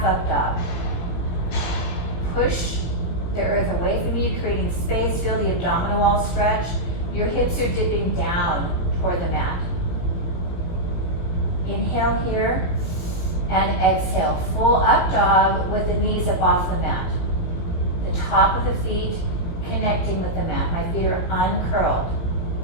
up dog. Push the earth away from you, creating space. Feel the abdominal wall stretch. Your hips are dipping down toward the mat. Inhale here and exhale. Full up dog with the knees up off the mat. The top of the feet connecting with the mat. My feet are uncurled.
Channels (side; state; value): right; late; 17 ms